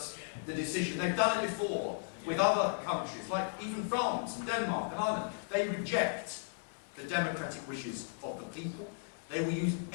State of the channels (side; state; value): right; silent; digital silence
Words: the decision. They've done it before with other countries, like even France and Denmark and Ireland. They reject the democratic wishes of the people. They will use